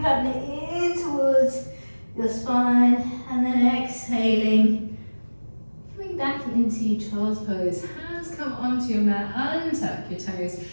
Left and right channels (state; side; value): inverted; both; correlation -1.00